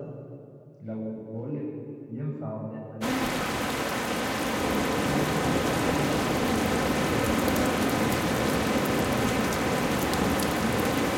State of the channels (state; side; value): identical; both; correlation 1.00